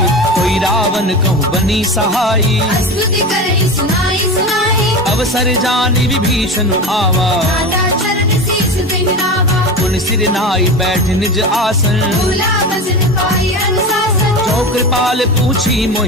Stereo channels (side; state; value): both; normal; correlation 0.26